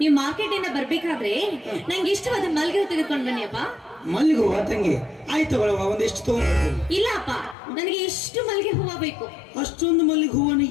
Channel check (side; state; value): right; drops out; at 7.6 s